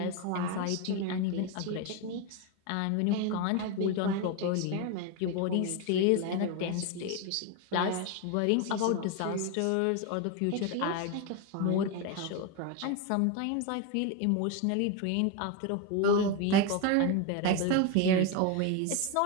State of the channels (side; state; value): both; different; correlation 0.02